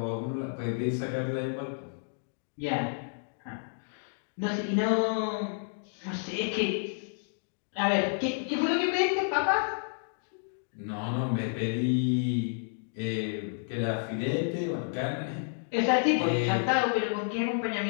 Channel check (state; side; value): silent; right; digital silence